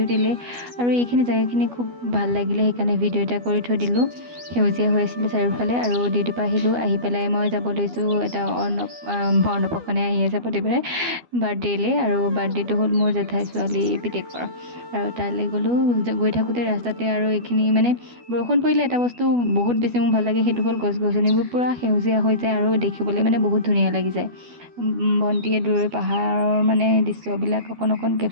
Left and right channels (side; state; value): left; late; 12 ms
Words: আৰু এইখিনি জেগাখিনি খুব ভাল লাগিলে, সেইকাৰণে ভিডিও এটা কৰি থৈ দিলোঁ। সেউজীয়া হৈ আছিলে চাৰিওফালে আৰু ডিউটিৰ পৰা আহিলোঁ। আহি পেলাই মই যাব লৈছোঁ এটা অন্নপ্ৰশনে আহি আছে প্ৰতিবাৰে বাৰ্থডেলৈ, আৰু বাৰ্থডেটো হ'ল মোৰ জেঠাই ছোৱালী পিতেকৰ। আৰু তালৈ গ'লোঁ। গৈ থাকোঁতে ৰাস্তাতে আৰু এইখিনি মানে বৰষুণ পৰিলে এটা বস্তু বহুত বেছি মোৰ ভাল লাগে, সেইটো হ'ল গছ-গছনিবোৰ পূৰা সেউজীয়া হৈ যায় আৰু দেখিবলৈ মানে বহুত ধুনীয়া লাগি যায়। ভণ্টিয়ে দূৰৈৰ পাহাৰৰ মানে দৃশ্যবিলাক অকণ